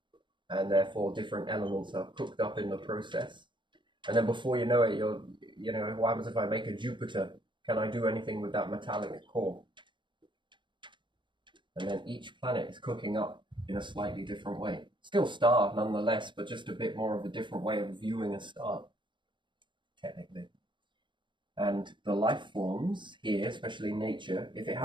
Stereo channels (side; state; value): left; late; 0.23 ms